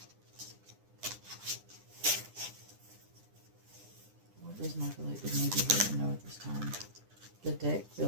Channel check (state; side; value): late; left; 9.8 ms